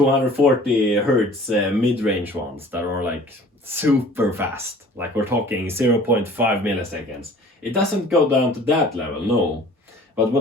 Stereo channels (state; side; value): normal; both; correlation 0.49